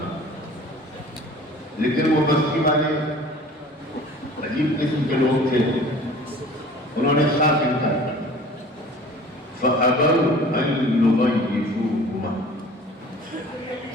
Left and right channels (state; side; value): normal; both; correlation 0.45